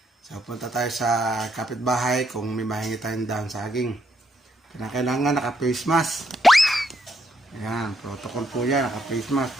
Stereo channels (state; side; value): normal; both; correlation 0.76